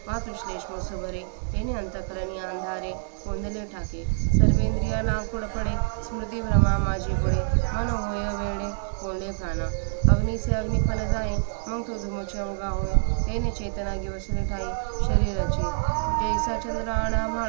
मातृश्लेष्म सुभरे. तेने अंतकरणी अंधारे कोंदले ठाके. सर्वेंद्रिया लाकुड पडे, स्मृती भ्रमा माझी बुडे. मन होय वेडे कोंडे प्राणा. अग्नीचे अग्निपण जाई, मग तो धुमचे अवघा होय. तेने चेतना गिवसले ठाई शरीराची. जैसा चंद्र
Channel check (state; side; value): silent; left; digital silence